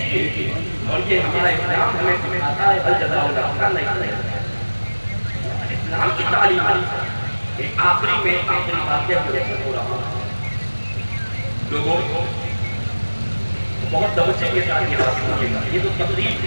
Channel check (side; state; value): both; inverted; correlation -1.00